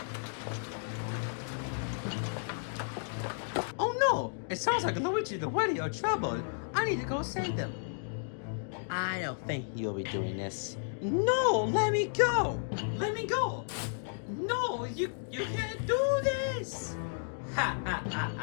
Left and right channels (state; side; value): silent; right; digital silence